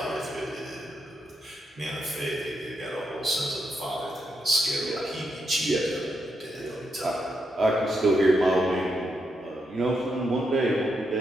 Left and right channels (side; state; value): both; normal; correlation 0.82